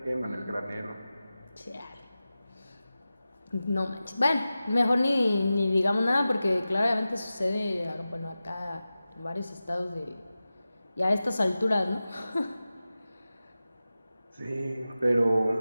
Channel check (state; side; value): inverted; both; correlation -0.94